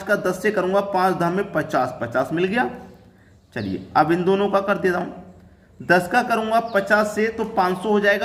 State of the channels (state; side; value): identical; both; correlation 1.00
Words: का 10 से करूंगा, 5 धाम में 50, 50 मिल गया। चलिए अब इन दोनों का कर देता हूं, 10 का करूंगा 50 से तो 500 हो